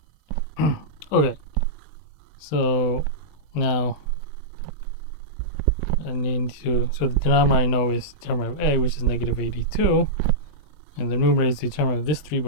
Okay, so now I need to, so the denominator I know is determinant of A, which is -82, and the numerator is determinant of this 3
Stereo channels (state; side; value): late; right; 20 ms